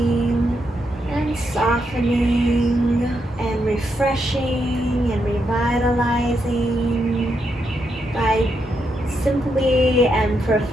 and softening and refreshing and revitalizing by simply and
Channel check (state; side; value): normal; both; correlation 0.81